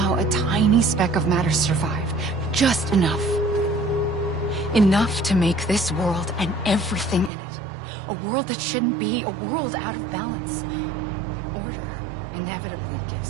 a tiny speck of matter survived. Just enough. Enough to make this world and everything in it. A world that shouldn't be, a world out of balance. Order inevitably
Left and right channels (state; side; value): drops out; left; at 7.3 s